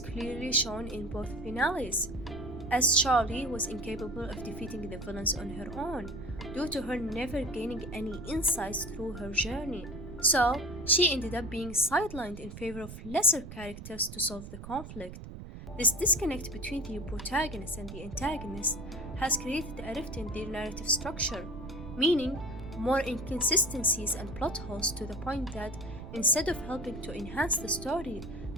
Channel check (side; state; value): right; noise; rumble, 11 dB below the sound